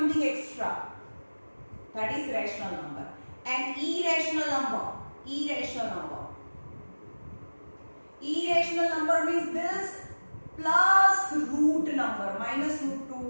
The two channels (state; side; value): inverted; both; correlation -1.00